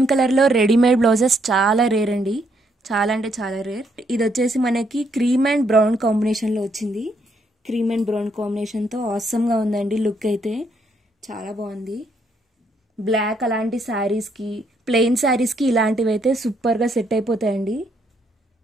కలర్ లో రెడీమేడ్ బ్లౌజెస్ చాలా రేర్ అండి, చాలా అంటే చాలా రేర్. ఇది వచ్చేసి మనకి క్రీమ్ అండ్ బ్రౌన్ కాంబినేషన్ లో వచ్చింది, క్రీమ్ అండ్ బ్రౌన్ కాంబినేషన్ తో ఆసమ్ గా ఉందండి. లుక్ అయితే చాలా బాగుంది. బ్లాక్ అలాంటి శారీస్ కి, ప్లెయిన్ శారీస్ కి ఇలాంటివి అయితే సూపర్ గా సెట్ అయిపోతాయండి.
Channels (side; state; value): both; normal; correlation 0.73